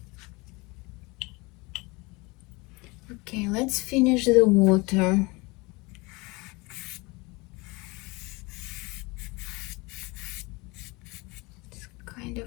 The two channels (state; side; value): quieter; right; 25.6 dB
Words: Okay, let's finish the water. It's kind of